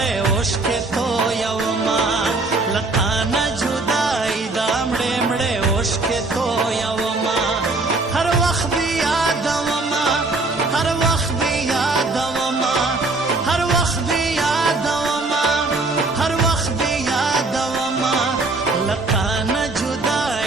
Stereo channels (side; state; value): left; quieter; 3.3 dB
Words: اوښکې تویومه له تا نه جدایي دا مړې مړې اوښکې تویومه هر وخت دې یادومه هر وخت دې یادومه هر وخت دې یادومه هر وخت دې یادومه له تا نه